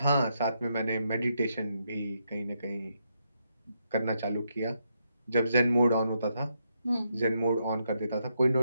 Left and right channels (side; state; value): both; inverted; correlation -0.80